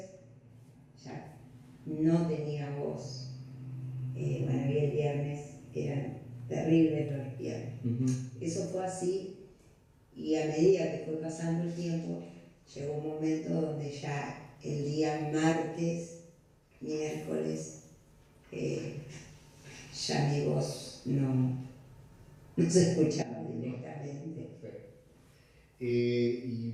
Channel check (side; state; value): both; identical; correlation 1.00